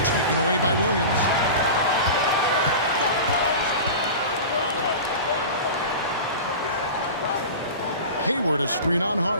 Taken away by Williams. Hayward a screen on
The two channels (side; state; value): both; inverted; correlation -0.31